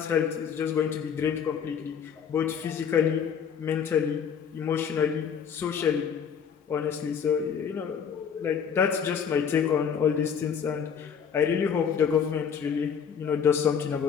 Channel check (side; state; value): right; quieter; 7.3 dB